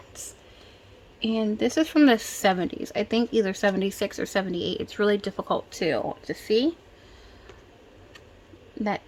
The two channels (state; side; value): identical; both; correlation 1.00